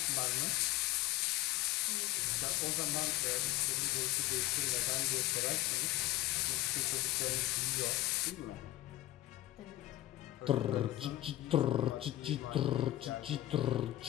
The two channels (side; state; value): right; quieter; 15.8 dB